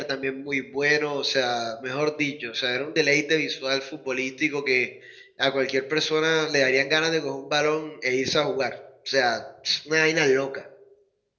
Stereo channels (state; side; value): identical; both; correlation 1.00